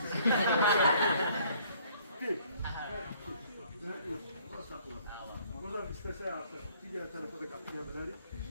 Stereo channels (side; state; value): both; inverted; correlation -0.60